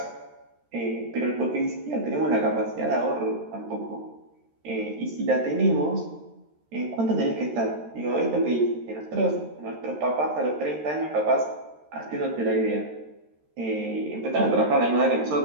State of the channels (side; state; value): left; late; 13 ms